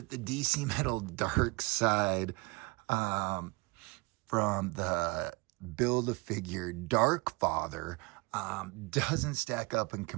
the DC Metal DARKSEID from the Build-A-Figure Darkfather doesn't stack up in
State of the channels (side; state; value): left; quieter; 26.2 dB